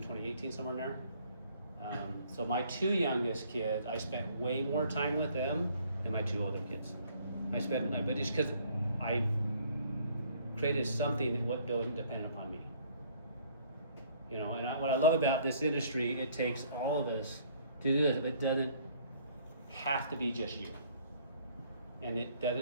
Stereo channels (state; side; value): inverted; both; correlation -0.60